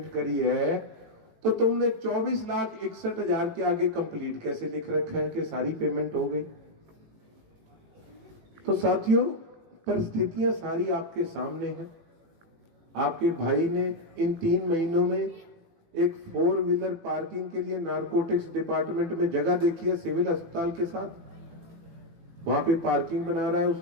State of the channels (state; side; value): late; left; 18 ms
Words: करी है तो तुमने 24,61,000 के आगे कंप्लीट कैसे लिख रखा है कि सारी पेमेंट हो गई? तो साथियों, परिस्थितियां सारी आपके सामने हैं। आपके भाई ने इन 3 महीनों में एक 4 व्हीलर पार्किंग के लिए नारकोटिक्स डिपार्टमेंट में जगह देखी है, सिविल अस्पताल के साथ, वहां पे पार्किंग बना रहा है।